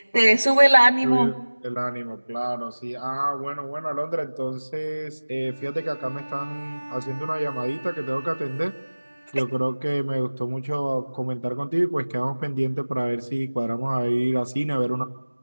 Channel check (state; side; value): inverted; both; correlation -1.00